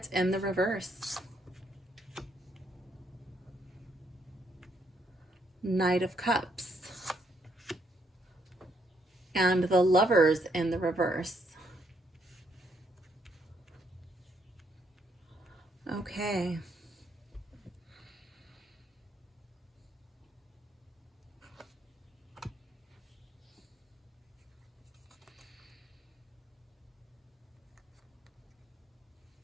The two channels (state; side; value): normal; both; correlation 0.73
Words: in the reverse. Knight of Cups. And the Lovers in the reverse. Okay.